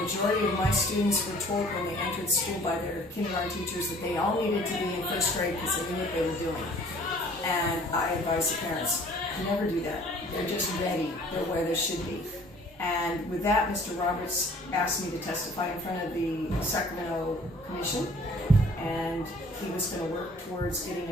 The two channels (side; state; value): both; normal; correlation 0.53